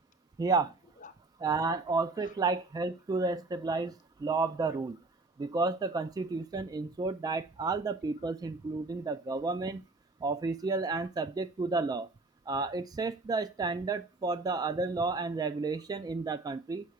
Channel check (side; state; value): left; quieter; 3.4 dB